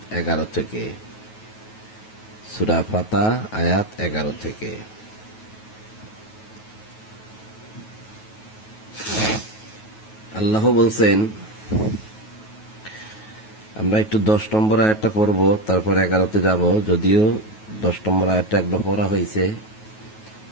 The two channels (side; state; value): right; late; 9.3 ms